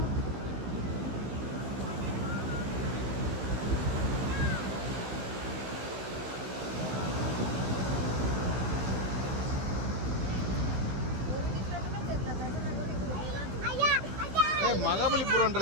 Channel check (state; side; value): late; left; 15 ms